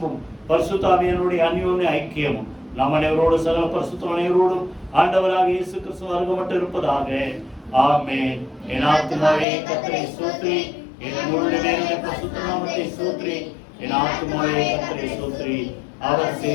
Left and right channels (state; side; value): drops out; right; at 9.5 s